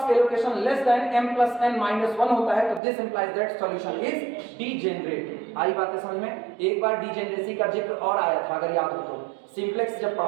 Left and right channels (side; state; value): left; drops out; at 2.8 s